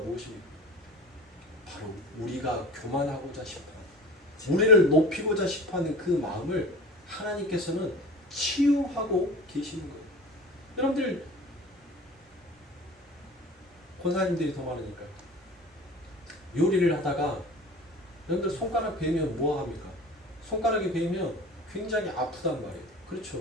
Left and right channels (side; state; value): both; normal; correlation 0.38